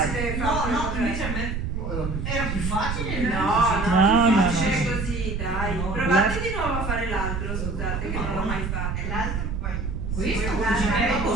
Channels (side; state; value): right; noise; rumble, 3 dB below the sound